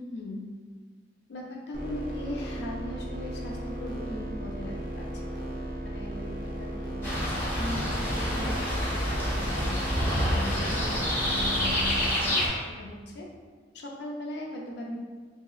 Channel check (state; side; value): normal; both; correlation 0.49